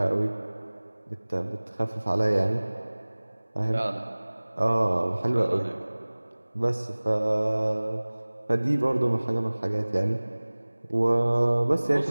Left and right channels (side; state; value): both; inverted; correlation -1.00